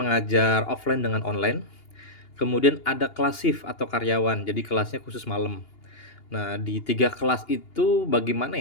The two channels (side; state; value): right; late; 2.8 ms